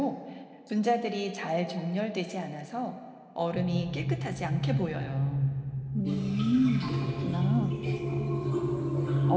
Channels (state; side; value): identical; both; correlation 1.00